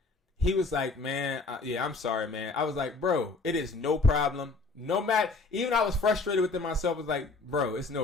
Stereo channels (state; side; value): quieter; right; 3.8 dB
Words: He was like, man, yeah, I'm sorry, man. I was like, bro, it is no problem. No matter, even I was frustrated within myself. I was like, bro, it's